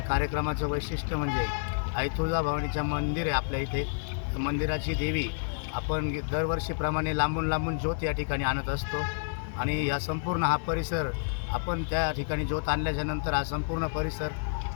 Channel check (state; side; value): silent; right; digital silence